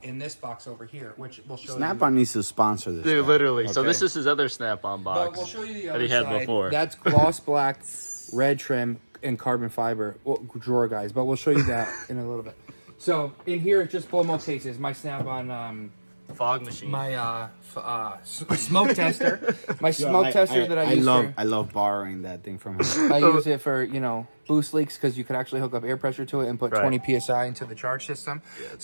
in this box over here, which we'll show you. Snap-on needs to sponsor this. Dude, guy. literally. Okay. So this is his other Snap-on box. But we'll show you the that other he had side. before. That's gloss black, red trim, and carbon fiber drawer, guys. But we'll show you that in a little bit. So in here, it's just blow mold cases. My Snap-on fog machine. my smoke tester. My smoke tester that I use. I love borrowing that thing from him. I use it for boost leaks, because you could actually hook up air pressure to it and put 20 psi into the charge system.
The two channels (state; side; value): inverted; both; correlation -1.00